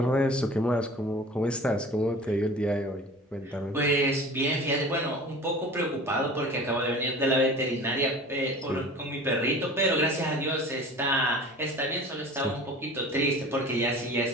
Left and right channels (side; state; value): both; normal; correlation 0.41